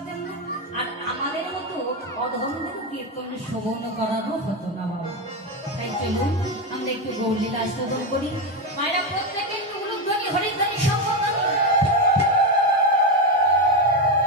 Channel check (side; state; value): both; normal; correlation 0.10